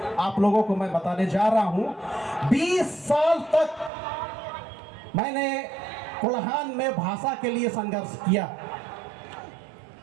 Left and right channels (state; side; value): drops out; left; at 3.9 s